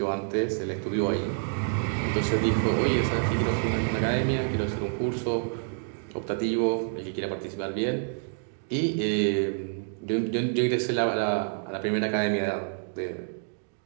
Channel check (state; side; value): silent; left; 59 dB below the other